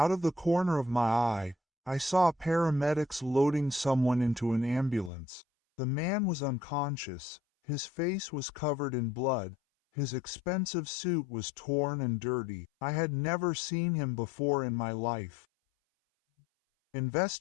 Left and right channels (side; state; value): right; drops out; at 5.1 s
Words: of the corner of my eye, I saw paramedics loading someone into an ambulance. The man was unconscious, his face was covered in blood, his expensive suit was torn and dirty. I had never seen him before in my life.